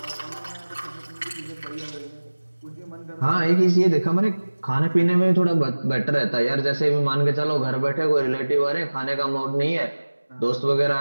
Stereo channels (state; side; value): inverted; both; correlation -1.00